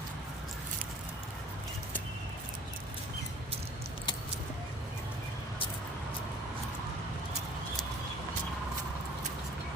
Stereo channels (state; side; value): normal; both; correlation 0.50